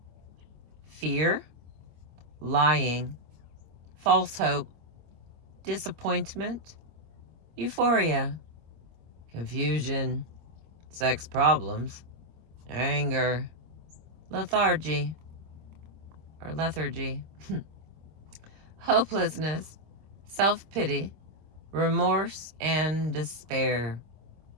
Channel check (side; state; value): left; late; 25 ms